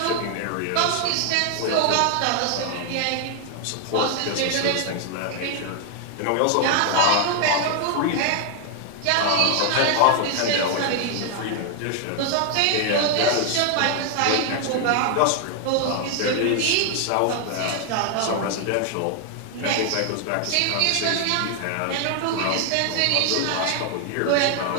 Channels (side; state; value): both; different; correlation 0.00